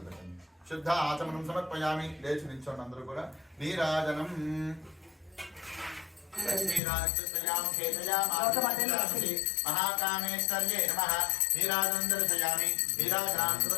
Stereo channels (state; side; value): drops out; right; at 6.8 s